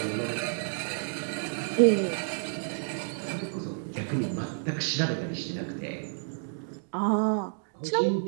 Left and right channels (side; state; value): left; silent; digital silence